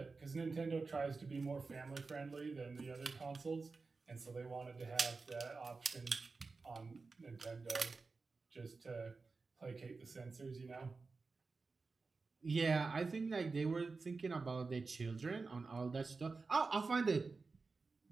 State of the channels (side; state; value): left; quieter; 4.1 dB